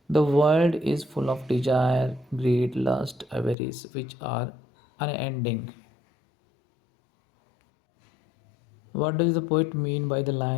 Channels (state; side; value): drops out; right; at 3.6 s